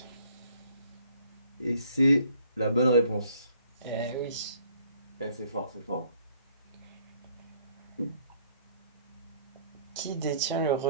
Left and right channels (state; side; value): inverted; both; correlation -0.62